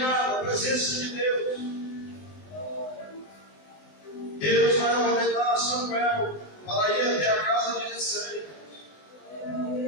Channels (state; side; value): late; right; 19 ms